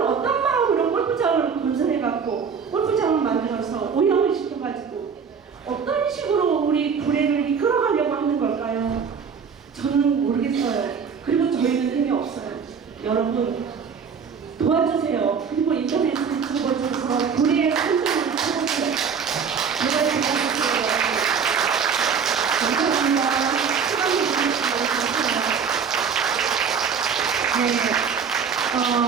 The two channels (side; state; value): left; quieter; 6.3 dB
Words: 어떤 마음으로 골프장을 건설해갖고 골프장을 만들어서 오염을 시켜가지고 어떤 식으로 우리 구례를 이끌어가려고 하는 걸까요? 저는 모르겠어요. 그리고 저희는 힘이 없어요. 여러분 도와주세요. 그리고 인터넷을 접어줘서 구례의 선정을 찾아주세요. 제발 도와주세요. 감사합니다. 시간을 주셔서 감사합니다.